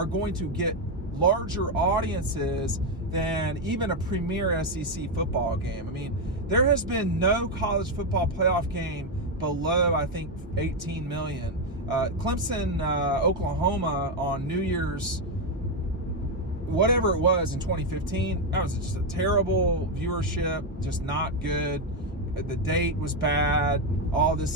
going to get larger audiences than even a premier SEC football game. I mean, there has been no college football playoff game below, I think, 18 million. Clemson, Oklahoma on New Year's, whatever it was in 2015, that was just a terrible viewership, just not good. The date was bad, all this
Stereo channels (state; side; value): normal; both; correlation 0.05